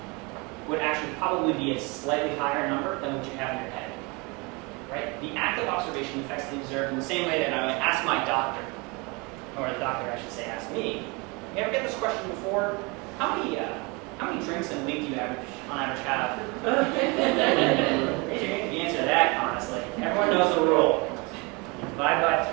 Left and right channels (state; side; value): quieter; left; 28.1 dB